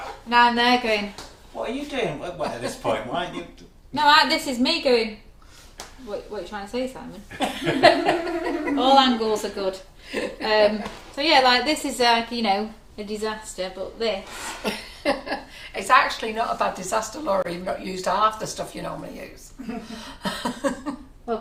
Now I'm there going, What are you doing? Well, at this point, why aren't you? no, this is me going, what are you trying to say, Simon? All angles are good. So yeah, like this is like, you know, a disaster, but this. It's actually not a bad disaster, Laura. You've not used half the stuff you normally use. Well,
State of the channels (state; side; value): identical; both; correlation 1.00